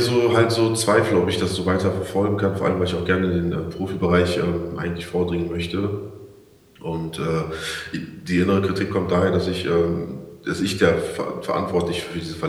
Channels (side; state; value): both; identical; correlation 1.00